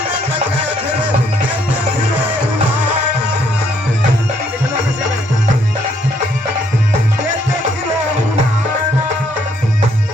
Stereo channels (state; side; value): normal; both; correlation 0.69